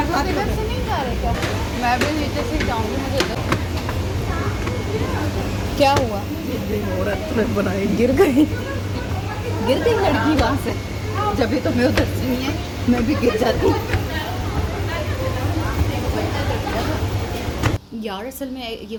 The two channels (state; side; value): identical; both; correlation 1.00